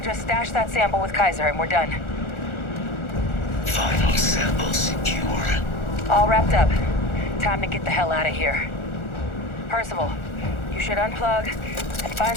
stash that sample with Kaiser and we're done. Final sample secure. All wrapped up. Time to get the hell out of here. Percival, you should unplug And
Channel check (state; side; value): late; right; 1.4 ms